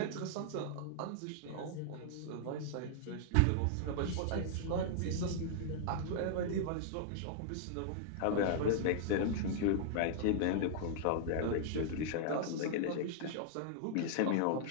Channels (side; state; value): both; different; correlation -0.01